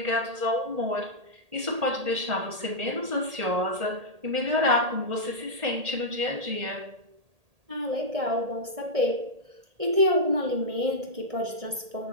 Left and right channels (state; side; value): late; left; 1.8 ms